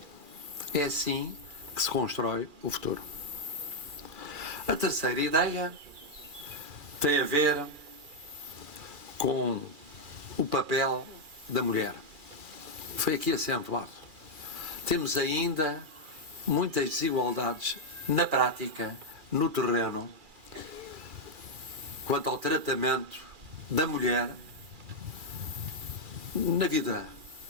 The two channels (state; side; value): late; left; 2.4 ms